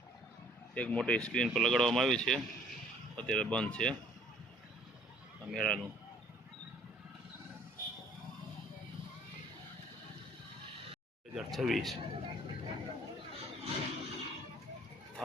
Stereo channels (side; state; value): both; normal; correlation 0.57